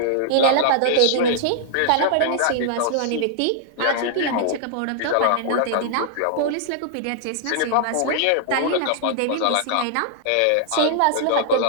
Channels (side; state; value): both; different; correlation -0.01